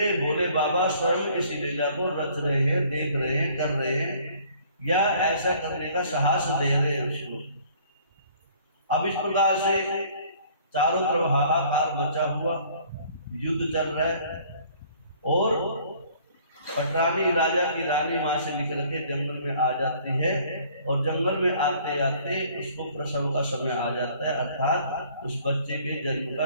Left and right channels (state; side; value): inverted; both; correlation -0.56